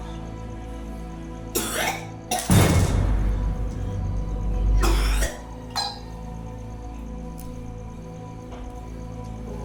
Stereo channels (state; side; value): identical; both; correlation 1.00